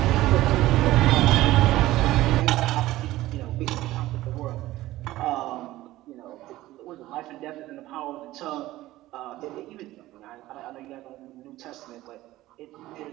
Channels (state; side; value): quieter; left; 16.4 dB